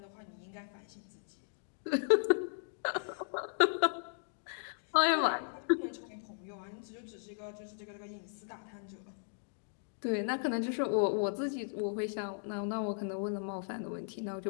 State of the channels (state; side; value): silent; right; digital silence